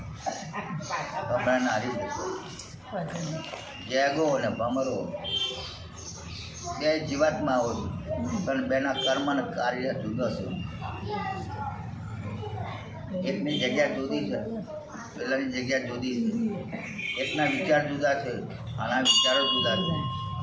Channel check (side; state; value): both; identical; correlation 1.00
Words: ભમરાને હારી જતો ગેગો અને ભમરો બે જીવાતમાં આવો પણ બેના કર્મ અને કાર્ય જુદા છે. એકની જગ્યા જુદી છે, પેલાની જગ્યા જુદી છે. એકના વિચાર જુદા છે, આના વિચારો જુદા છે,